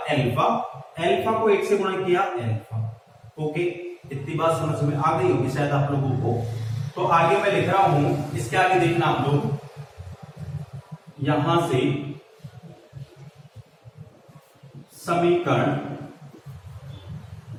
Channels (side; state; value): both; identical; correlation 1.00